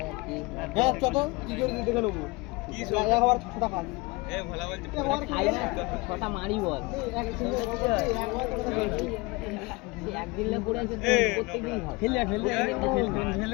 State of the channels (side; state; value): right; quieter; 24.3 dB